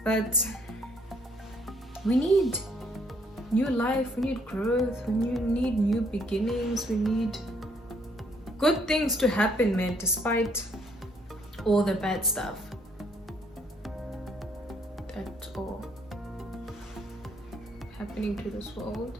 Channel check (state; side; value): normal; both; correlation 0.67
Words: but we need new life, we need growth, we need new beginnings, we need good things to happen, man, despite all the bad stuff that are happening to this world.